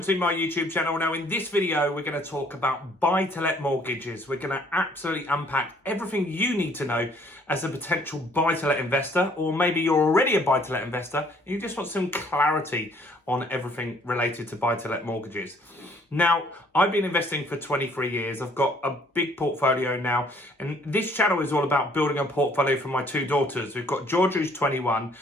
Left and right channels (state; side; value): normal; both; correlation 0.61